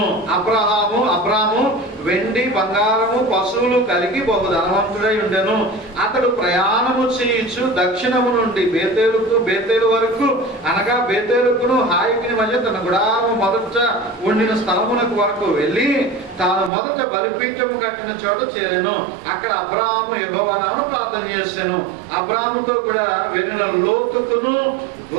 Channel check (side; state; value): left; drops out; at 16.7 s